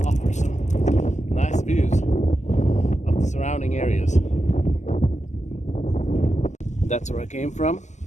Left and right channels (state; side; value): late; right; 0.34 ms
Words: offer some nice views of the surrounding areas. That's where I came from.